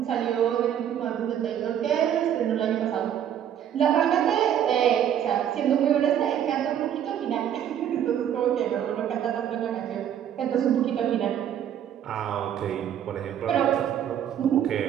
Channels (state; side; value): quieter; left; 9.8 dB